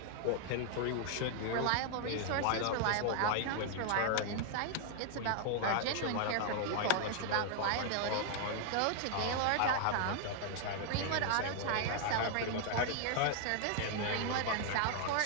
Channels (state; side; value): different; both; correlation 0.00